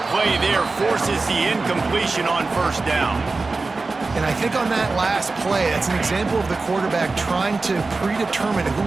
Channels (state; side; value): quieter; left; 3.7 dB